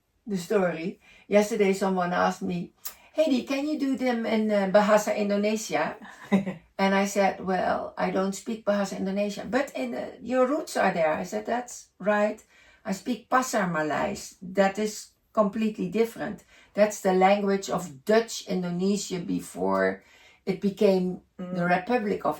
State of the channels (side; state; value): both; identical; correlation 1.00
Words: story. Yesterday, someone asked me, Hedy, can you do them in Bahasa Indonesia? And I said, well, I don't speak Bahasa Indonesia, but your roots are there. I said, that's right. I speak Pasar Malays. That is completely different. That's the language of Dutch Indonesia before it became the Republic of